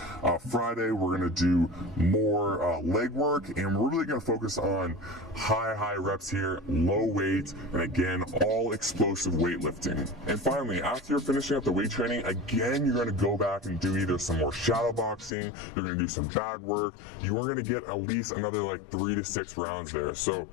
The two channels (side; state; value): right; drops out; at 15.3 s